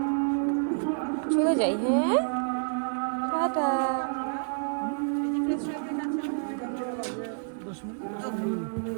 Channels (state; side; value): silent; left; 59 dB below the other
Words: চলে যাই, হ্যাঁ টাটা।